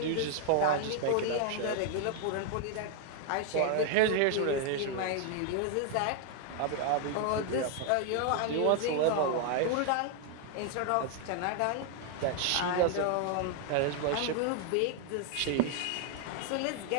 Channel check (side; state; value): both; different; correlation 0.00